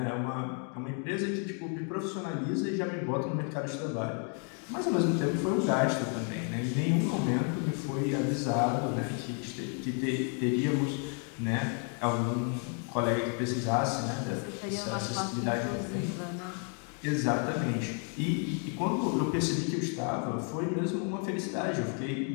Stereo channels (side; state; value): right; quieter; 39.7 dB